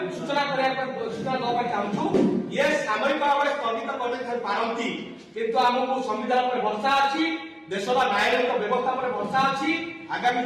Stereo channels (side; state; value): both; identical; correlation 1.00